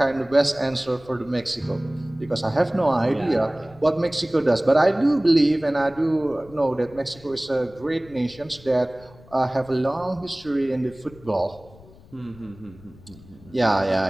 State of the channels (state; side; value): noise; left; rumble, 23 dB below the sound